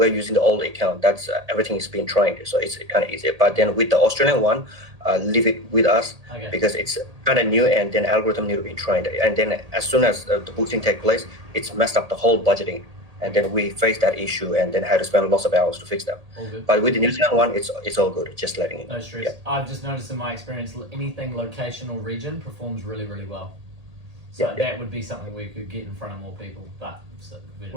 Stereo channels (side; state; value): left; late; 1.8 ms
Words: using the old account. That's everything is being trained, so it's kind of easy. But then with the Australian one, leave it with us Okay. because it's kind of new, and then algorithm need to be trained. And then as soon as the boosting take place, it's messed up the whole budgeting. And then we face that issue, and then had to spend lots of hours to fix that. All good. But with the New Zealand one, it's all good. Just letting it. No stress. Yeah. I've just noticed in my experience, anything location or region performs really, really well. So Yeah. that would be something we could get in front of more people. But